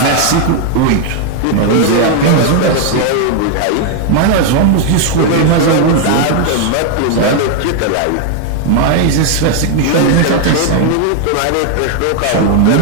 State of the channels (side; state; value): both; different; correlation 0.00